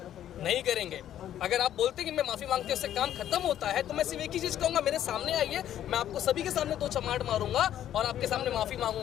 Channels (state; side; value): quieter; right; 11.2 dB